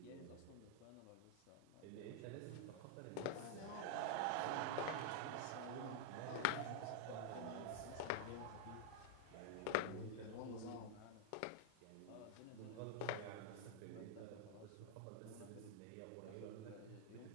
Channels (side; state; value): both; different; correlation 0.00